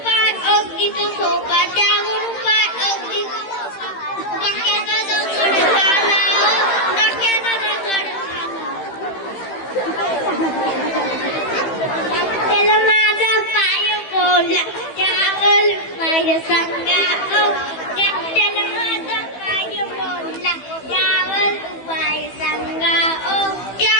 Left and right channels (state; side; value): late; right; 15 ms